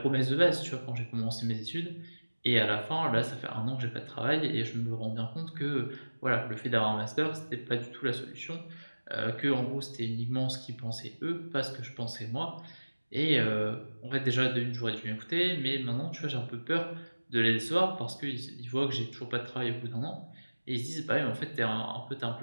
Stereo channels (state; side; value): inverted; both; correlation -1.00